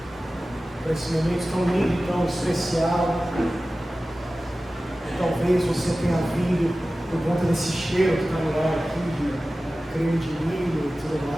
para esse momento tão lindo e tão especial. Talvez você tenha vindo por conta desse cheiro que está no ar aqui, de creme de milho e tudo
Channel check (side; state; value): both; normal; correlation 0.96